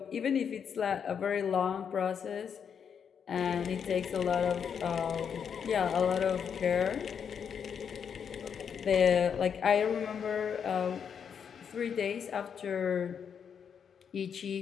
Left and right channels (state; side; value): quieter; right; 7.3 dB